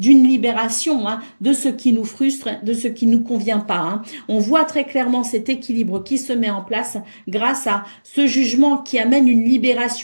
libération hein, de ce qui nous frustre, de ce qui ne nous convient pas. Hein. On voit très clairement cet équilibre qui se met en place grâce à ce jugement qui qui amène une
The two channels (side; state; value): both; inverted; correlation -1.00